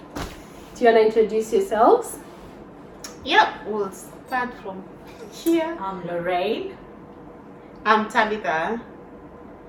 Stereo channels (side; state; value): both; identical; correlation 1.00